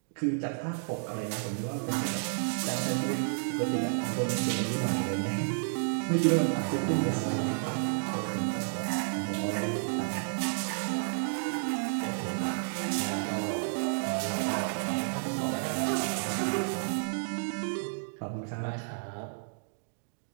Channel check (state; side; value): silent; left; digital silence